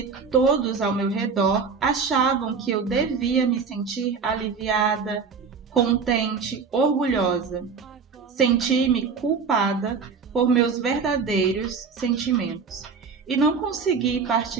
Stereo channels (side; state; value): left; quieter; 5.5 dB